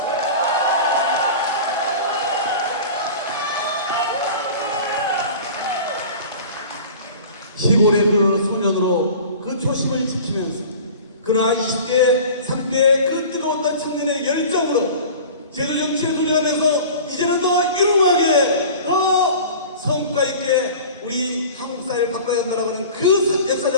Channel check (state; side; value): inverted; both; correlation -0.39